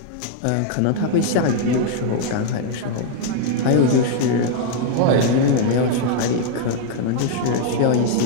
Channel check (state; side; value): different; both; correlation 0.00